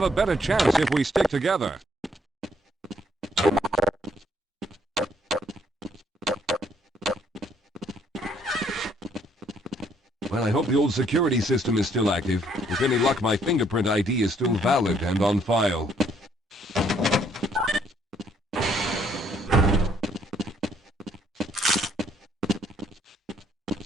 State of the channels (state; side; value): normal; both; correlation 0.67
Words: a better chance if we stick together. Well, I hope the old security system is still active. With any luck, my fingerprint ID is still valid and on file.